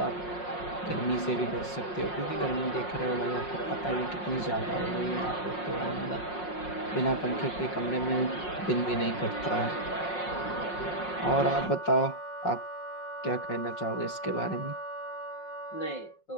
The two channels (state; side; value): late; right; 5.5 ms